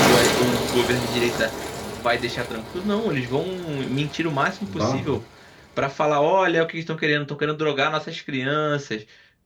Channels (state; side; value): identical; both; correlation 1.00